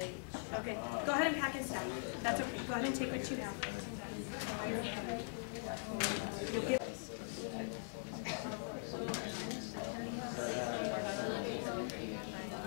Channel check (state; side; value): silent; right; digital silence